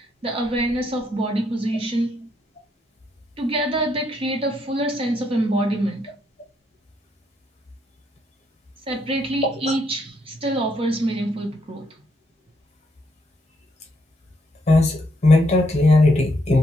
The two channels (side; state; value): both; normal; correlation 0.75